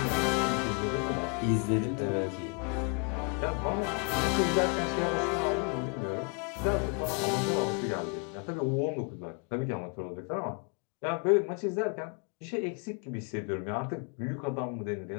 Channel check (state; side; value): quieter; right; 36.9 dB